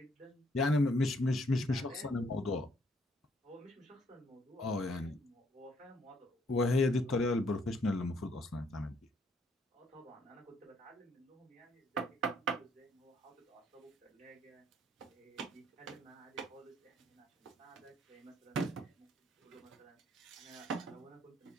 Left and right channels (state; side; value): normal; both; correlation 0.68